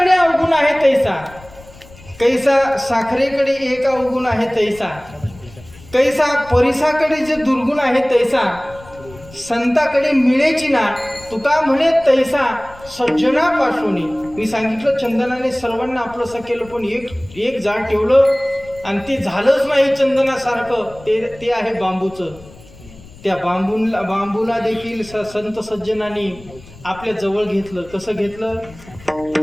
अवगुण आहे तैसा, कैसा साखरेकडे एक अवगुण आहे तैसा, कैसा परिसाकडे जे दुर्गुण आहे तैसा संताकडे मिळेची ना. तुका म्हणे तैसा सज्जनापासून. मी सांगितलं चंदनाने सर्वांना आपलंसं केलं, पण एक झाड ठेवलं आणि ते झालंच नाही चंदनासारखं. ते आहे बांबूचं. त्या बांबूला देखील संत सज्जनांनी आपल्या जवळ घेतलं. कसं घेतलं?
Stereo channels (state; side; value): noise; left; rumble, 21 dB below the sound